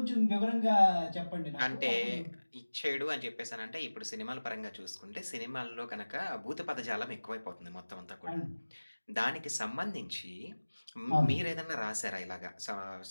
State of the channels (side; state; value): both; inverted; correlation -1.00